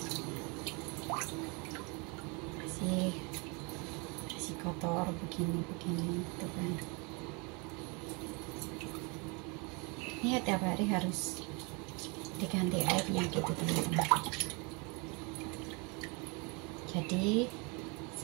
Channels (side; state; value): left; quieter; 31.0 dB